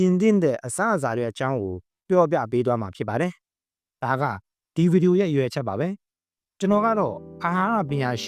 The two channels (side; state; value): both; identical; correlation 1.00